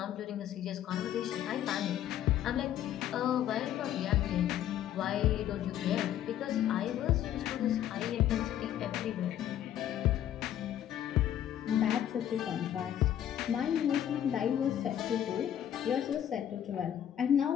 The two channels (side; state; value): right; quieter; 10.9 dB